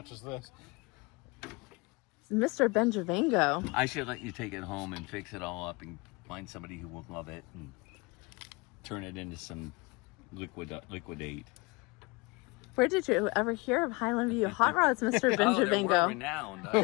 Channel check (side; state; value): right; quieter; 26.4 dB